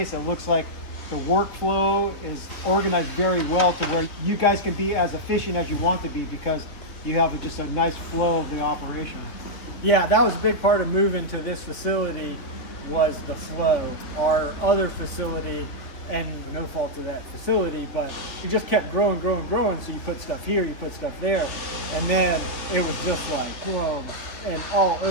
it looks like the workflow is organized very well to where you guys can be as efficient as you want to be, because you have just a nice flow of the operation. Yeah, that was a big part of moving to this facility, was the flow. Our other facility, and no fault to that facility, but it just kept growing. So you put stuff here, you put stuff there, and then it was just like boom, and all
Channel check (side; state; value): right; late; 3.2 ms